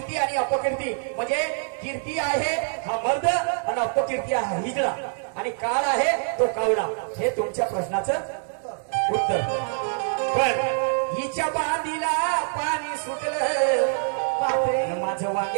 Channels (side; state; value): left; silent; digital silence